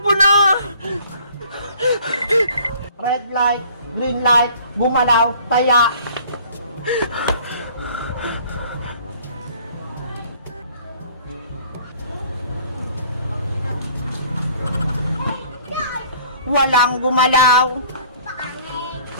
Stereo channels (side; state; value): both; inverted; correlation -0.53